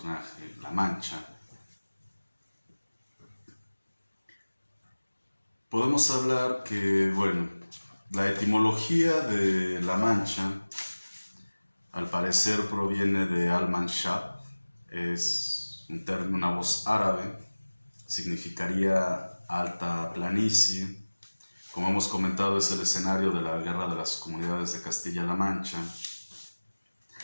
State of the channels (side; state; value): both; inverted; correlation -1.00